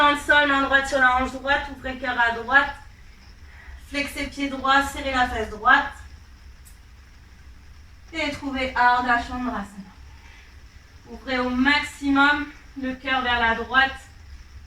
le sol, main droite sur la hanche droite, ouvrez cœur à droite. Flexez pied droit, serrez la fesse droite. Et trouvez Ardha Chandrasana. Ouvrez au maximum le cœur vers la droite.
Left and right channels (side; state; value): both; identical; correlation 1.00